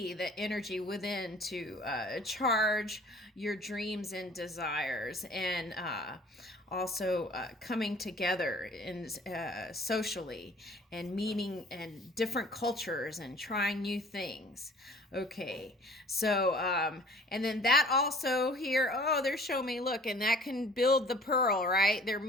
that energy within to charge your dreams and desires. And also coming together in socially and meeting and different cultures and trying new things. Okay, so and then that also here, oh, they're showing me, look, and that can build the pearl, right? There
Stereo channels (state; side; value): normal; both; correlation 0.50